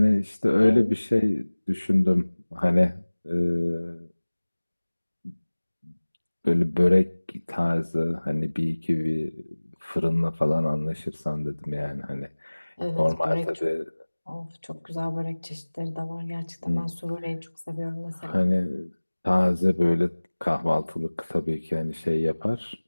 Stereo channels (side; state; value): both; inverted; correlation -1.00